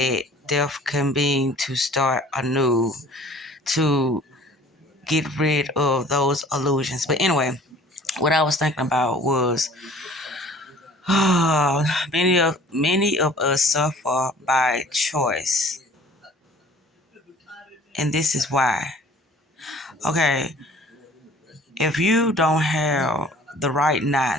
Death can mean to start anew, to get rid of those illusions. But anyway, what I was thinking about was many of us suffer by choice. And this is why. Okay, if you don't have the right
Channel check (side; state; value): both; normal; correlation 0.50